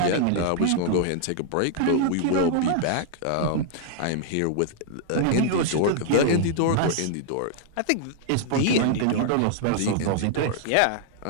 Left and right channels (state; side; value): different; both; correlation 0.00